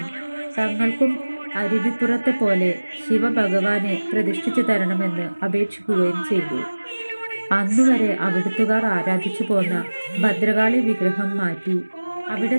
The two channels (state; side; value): inverted; both; correlation -1.00